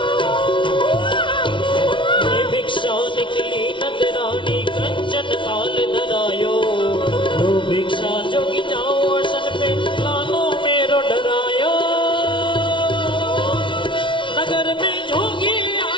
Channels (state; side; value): late; right; 0.24 ms